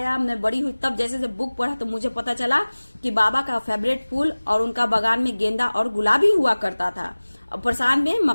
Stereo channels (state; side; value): inverted; both; correlation -1.00